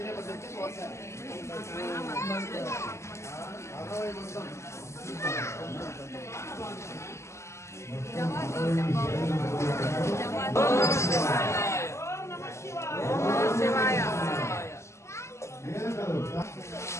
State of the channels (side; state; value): right; late; 0.13 ms